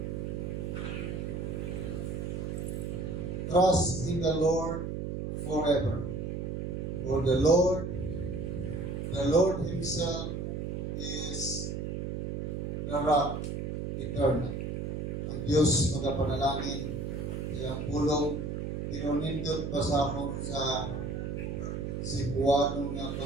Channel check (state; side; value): noise; right; hum, 3 dB below the sound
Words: Trust in the Lord forever. For the Lord Himself is the rock eternal. Ang Diyos magapanalangin, iyang pulong pinunindot ba sa akong sa Cebuano nga